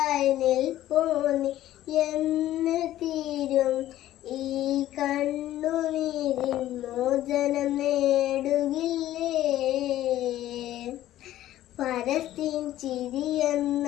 നിൽപ്പോന്നി എന്ന് തീരും ഈ കണ്ണുനീരിൻ മോചനം നേടുകില്ലേ? ഫലസ്തീൻ ചിരി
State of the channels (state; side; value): quieter; right; 13.7 dB